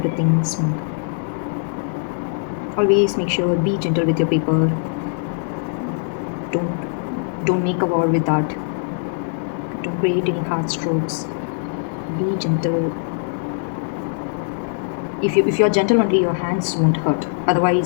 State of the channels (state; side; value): silent; right; digital silence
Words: smooth. Always make sure, be gentle with your paper. Don't make a war with that. Don't create any hard strokes. Be gentle. If you're gentle only, your hands won't hurt.